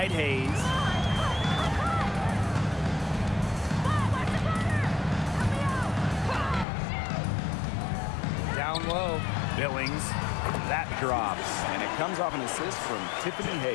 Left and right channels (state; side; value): drops out; right; at 6.7 s